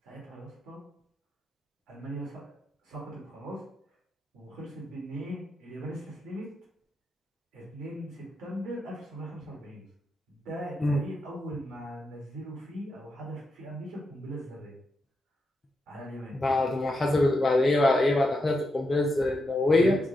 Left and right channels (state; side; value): normal; both; correlation 0.84